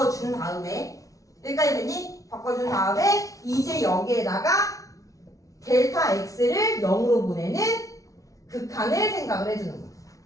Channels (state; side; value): late; right; 0.17 ms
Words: 다음에 여기까지 됐니? 바꿔준 다음에 이제 여기에다가 델타 X를 0으로 보내는 극한을 생각을 해주는 거야.